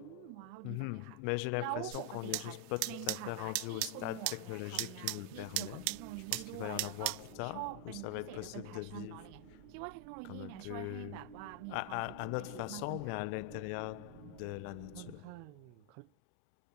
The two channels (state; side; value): different; both; correlation 0.00